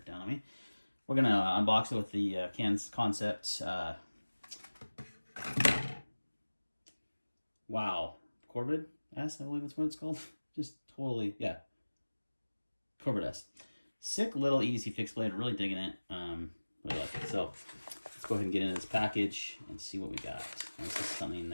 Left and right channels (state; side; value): inverted; both; correlation -1.00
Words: down on me. We're going to unbox it with the concept. Wow. Corvid S, I believe that's what it's called. Just totally, yeah. Corvid S. Sick little easy fix blade. Really digging it. Really like it. So let's go ahead and get into this package and see what we got. And this is something